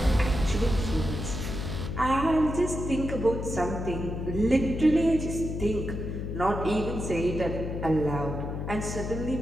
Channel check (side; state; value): left; noise; hum, 4 dB below the sound